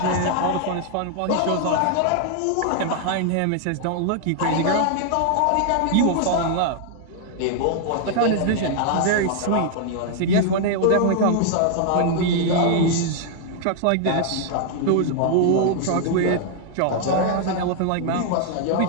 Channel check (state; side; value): different; both; correlation 0.00